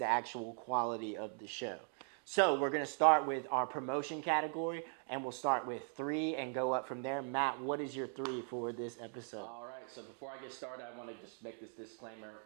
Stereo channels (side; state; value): left; silent; 51 dB below the other